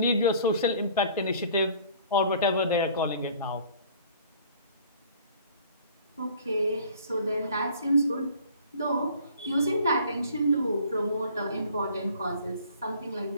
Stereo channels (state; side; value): inverted; both; correlation -0.51